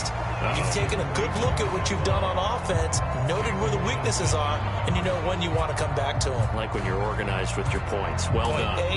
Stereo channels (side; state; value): both; identical; correlation 1.00